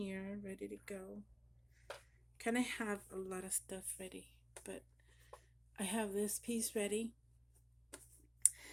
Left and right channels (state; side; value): identical; both; correlation 1.00